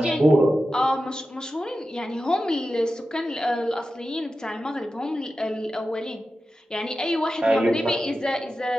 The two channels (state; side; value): normal; both; correlation 0.92